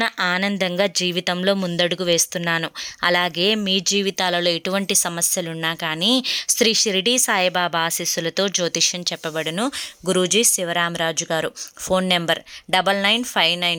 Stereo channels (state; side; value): identical; both; correlation 1.00